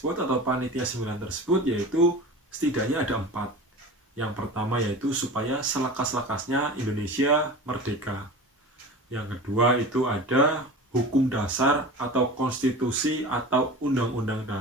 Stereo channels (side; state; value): both; normal; correlation 0.34